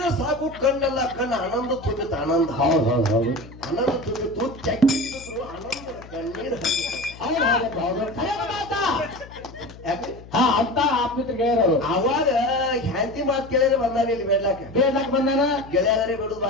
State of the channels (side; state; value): left; noise; hum, 18 dB below the sound